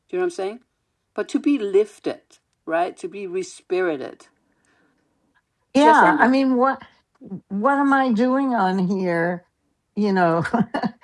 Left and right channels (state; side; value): identical; both; correlation 1.00